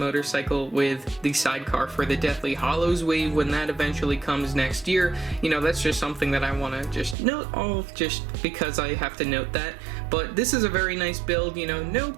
with the sidecar for the Deathly Hallows wave when that eventually comes next year. You know, that's just something that I want to just note off just because I have to note that. But this is a very nice build, you know, no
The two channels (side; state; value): left; drops out; at 7.2 s